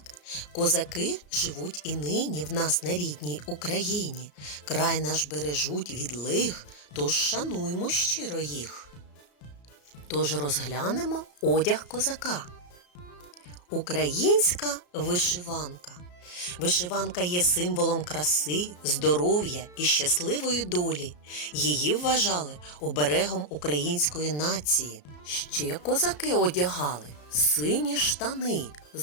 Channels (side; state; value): right; late; 34 ms